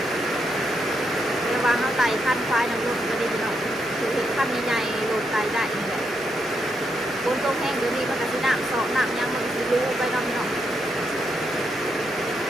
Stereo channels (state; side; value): normal; both; correlation 0.80